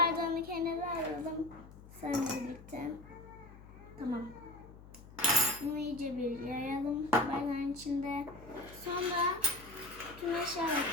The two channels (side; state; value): left; noise; hum, 18 dB below the sound